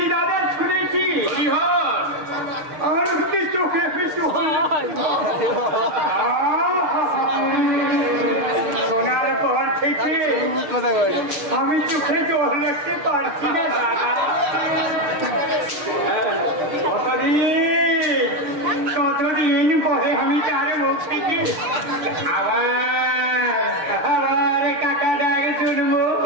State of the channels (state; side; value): late; left; 6.6 ms